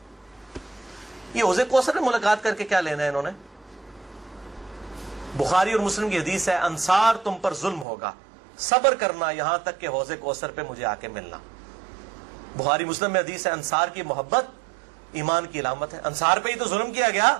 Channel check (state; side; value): drops out; left; at 7.9 s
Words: یہ حوض کوثر میں ملاقات کر کے کیا لینا ہے انہوں نے؟ بخاری اور مسلم کی حدیث ہے انصار تم پر ظلم ہوگا، صبر کرنا یہاں تک کہ حوض کوثر پہ مجھے آ کے ملنا۔ بخاری مسلم میں حدیث ہے انصار کی محبت ایمان کی علامت ہے۔ انصار پہ ہی تو ظلم کیا گیا،